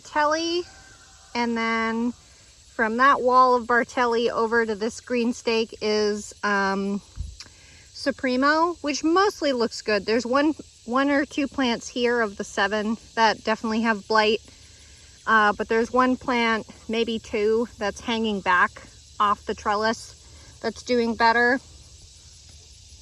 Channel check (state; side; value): identical; both; correlation 1.00